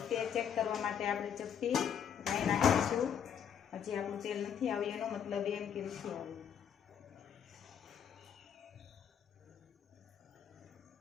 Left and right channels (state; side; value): quieter; right; 8.3 dB